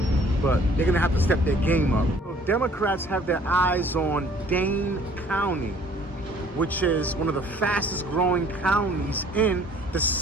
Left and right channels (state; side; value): normal; both; correlation 0.56